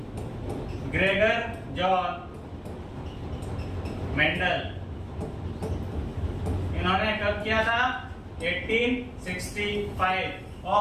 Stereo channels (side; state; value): both; identical; correlation 1.00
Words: Gregor John Mendel. इन्होंने कब किया था? 1865।